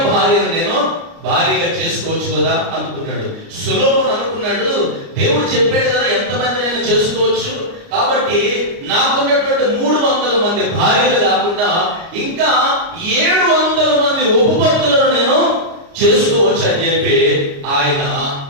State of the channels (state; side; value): late; left; 29 ms